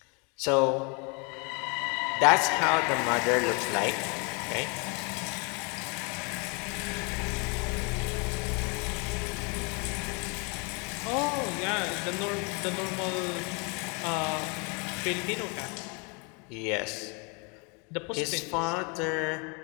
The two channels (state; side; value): quieter; right; 32.8 dB